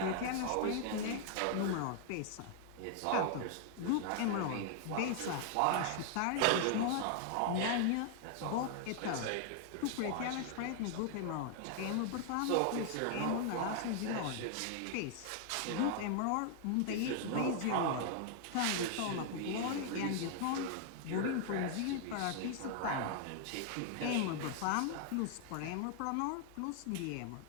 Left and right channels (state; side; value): different; both; correlation 0.00